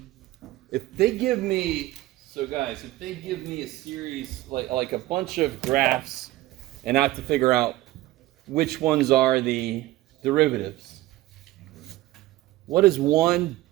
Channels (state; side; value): quieter; left; 16.8 dB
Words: If they give me, so guys, if they give me a series, like a bunch of graphs, and I have to figure out which ones are the derivatives, what is one